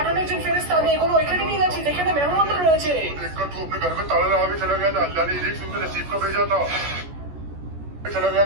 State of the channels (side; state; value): left; late; 14 ms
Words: একজন ফেরেশতা, আমি এগুলো ওইখানে নিয়ে যাচ্ছি যেখানে মেহমানরা রয়েছে। देखकर तू अपने घर में ताला लगा के चला गया था, अल्लाह ने रिज़्क सुनकर नसीब का भेजा था। चला गया